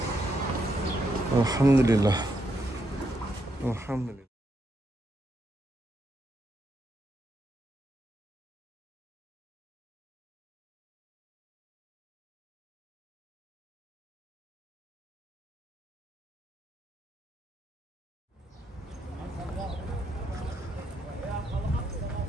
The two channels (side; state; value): both; normal; correlation 0.79